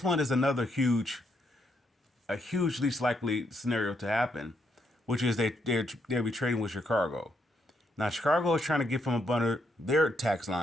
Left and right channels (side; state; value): both; normal; correlation 0.76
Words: one is another a huge least likely scenario to happen, which is they'll be trading with Chicago. Now Chicago is trying to get from up under their tax